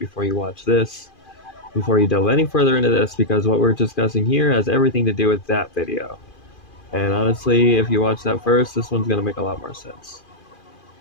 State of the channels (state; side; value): late; right; 2.4 ms